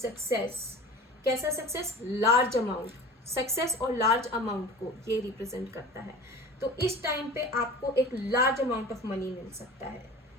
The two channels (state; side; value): normal; both; correlation 0.38